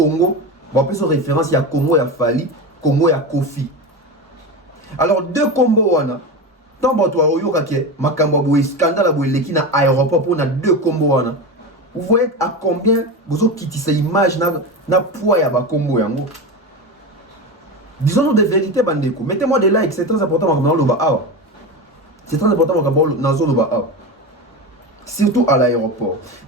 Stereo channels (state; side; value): normal; both; correlation 0.22